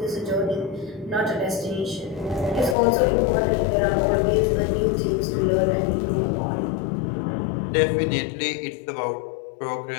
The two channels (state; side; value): drops out; right; at 2.8 s